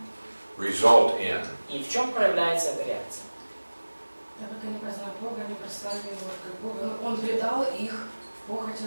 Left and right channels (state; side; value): inverted; both; correlation -1.00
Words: result in? И в чем проявляется эта реакция? Так как они познали Бога, они прославили Его как Бога. Он предал их в